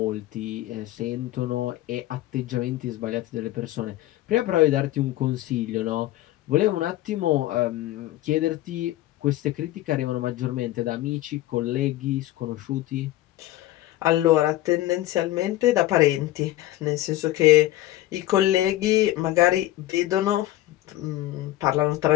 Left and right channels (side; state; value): right; quieter; 15.4 dB